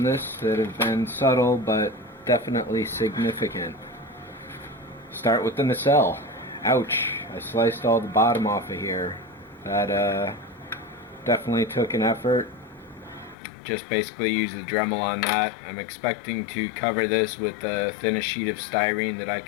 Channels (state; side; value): drops out; right; at 13.4 s